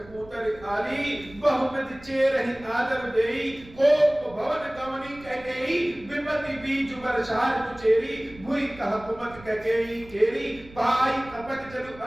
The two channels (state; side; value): noise; right; rumble, 20 dB below the sound